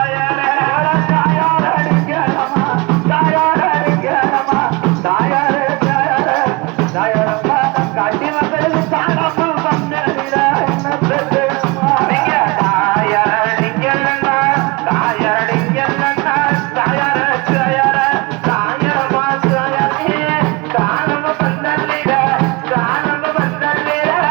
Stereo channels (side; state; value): left; quieter; 25.8 dB